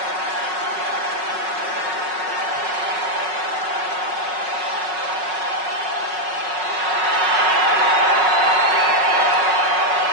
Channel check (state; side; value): late; left; 5.4 ms